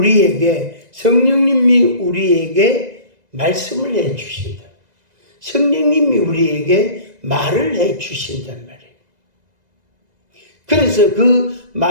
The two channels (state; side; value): late; left; 2.0 ms